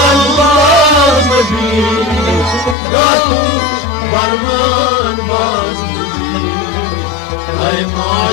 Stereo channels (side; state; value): right; drops out; at 2.8 s